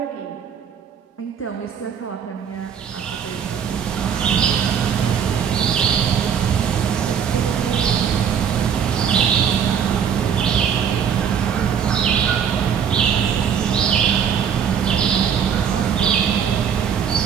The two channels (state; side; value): quieter; left; 7.8 dB